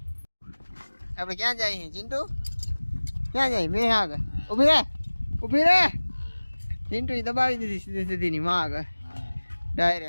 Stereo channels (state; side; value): inverted; both; correlation -1.00